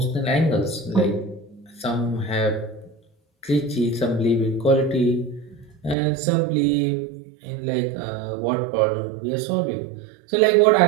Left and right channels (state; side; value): drops out; left; at 6.0 s